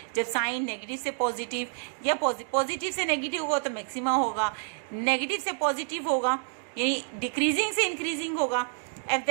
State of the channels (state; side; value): silent; left; 59 dB below the other